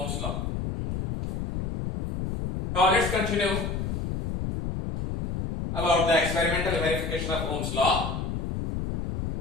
law. Now let's continue about the experimental verification of Ohm's law.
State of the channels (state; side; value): noise; left; rumble, 3 dB below the sound